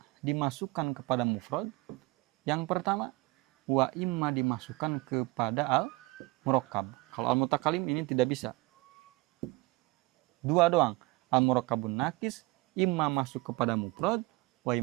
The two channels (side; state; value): left; quieter; 22.5 dB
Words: dimasukkan kepada mufrad. Yang pertama, wa imma dimasukkan kepada al-murakkab. Kalau al-mutakalim ini tidak bisa. 2 doang. Al-murakkabun nakis imma masuk kepada mufrad, wa